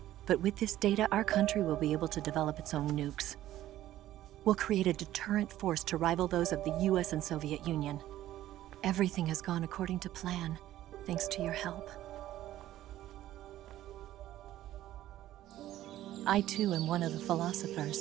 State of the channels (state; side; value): quieter; left; 13.8 dB